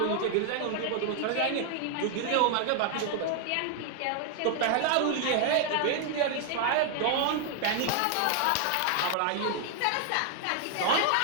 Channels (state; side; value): different; both; correlation 0.00